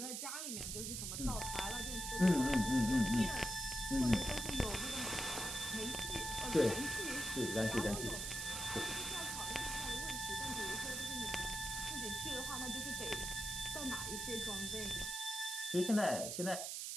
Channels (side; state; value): right; noise; hiss, 3 dB below the sound